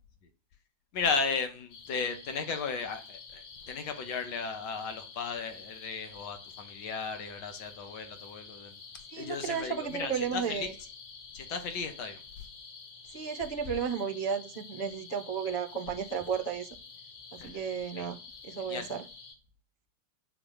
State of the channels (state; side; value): late; right; 7.1 ms